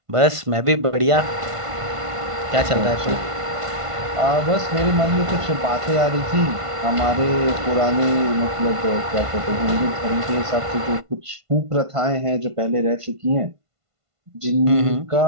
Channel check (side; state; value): left; late; 1.5 ms